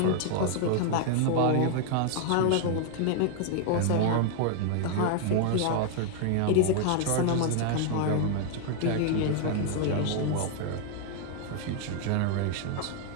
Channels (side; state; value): both; different; correlation 0.00